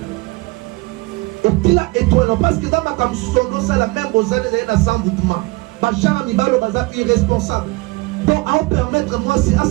Éclat étoile parce que dans ma cam sono ça la même aux années dans sans boutement. Bachara mibalo baza irresponsable. Donc à permettre moi si à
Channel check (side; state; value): left; quieter; 23.6 dB